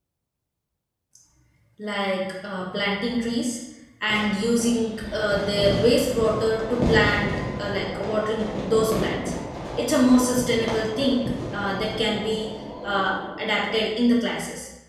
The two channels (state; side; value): identical; both; correlation 1.00